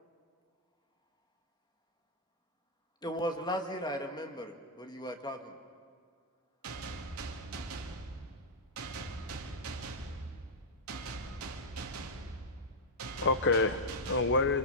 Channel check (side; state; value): both; normal; correlation -0.06